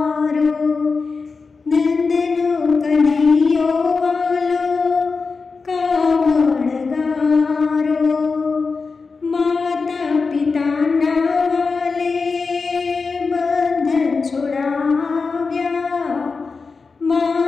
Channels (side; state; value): right; quieter; 4.5 dB